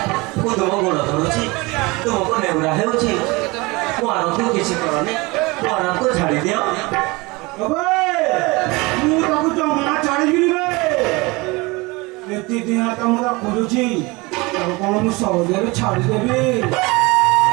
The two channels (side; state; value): left; quieter; 24.4 dB